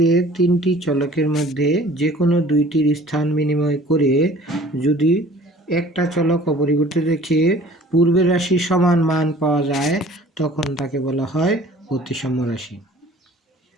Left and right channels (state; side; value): normal; both; correlation 0.50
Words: 3টি চলকের মধ্যে যে কোনো 2টির স্থান বিনিময় করে যদি একটা চলক অপরিবর্তিত রেখে পূর্বের রাশির সমান মান পাওয়া যায় তখন তাকে বলা হয় প্রতিসাম্য রাশি।